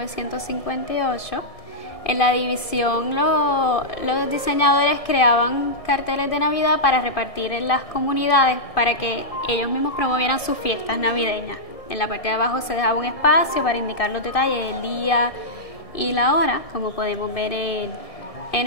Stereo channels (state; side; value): late; right; 1.7 ms